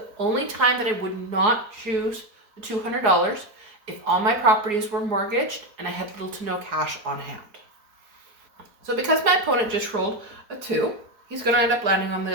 only time that I would not choose the $200 if all my properties were mortgaged and I had little to no cash on hand. So because my opponent just rolled a 2, he's going to end up landing on the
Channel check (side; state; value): left; late; 4.8 ms